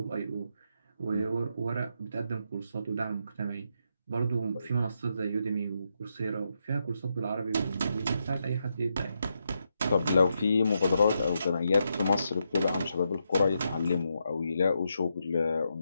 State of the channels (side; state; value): both; inverted; correlation -0.82